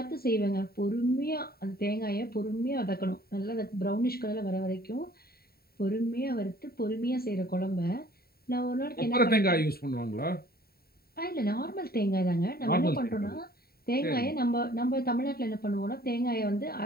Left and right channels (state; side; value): late; right; 0.45 ms